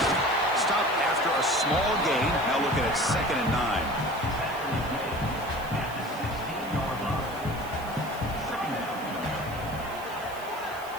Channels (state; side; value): noise; right; hiss, 19 dB below the sound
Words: Stop after a small gain. Now looking at second and 9.